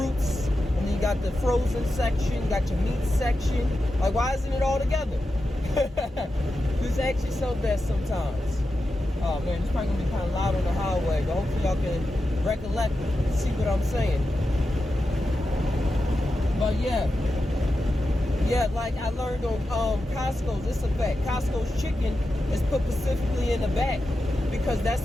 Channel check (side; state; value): both; normal; correlation 0.90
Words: and then you got the frozen section, you got your meat section. Like, why isn't it all together? Just ask yourself that sometimes. Oh man, it's probably gonna be kind of loud on the highway, but hopefully y'all can recollect and see what I'm saying. But yeah, like I learned on Costco's, it's a fact. Costco's chicken is put specifically in the back because that's